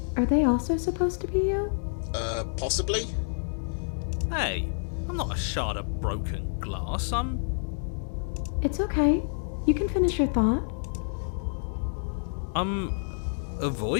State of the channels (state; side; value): silent; right; digital silence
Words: Are they also supposed to be you? Possibly? Hey, I'm not a shard of broken glass, I'm... It's okay. You can finish your thought. I'm a